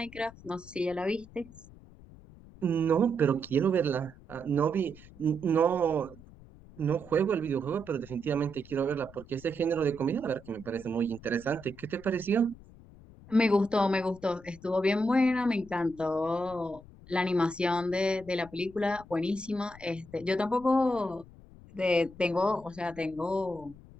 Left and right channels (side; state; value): left; noise; rumble, 20 dB below the sound